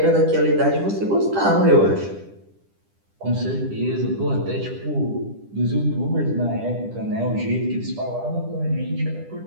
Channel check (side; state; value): left; late; 10 ms